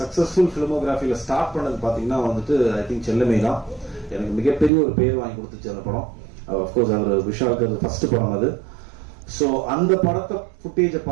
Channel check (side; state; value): left; drops out; at 4.7 s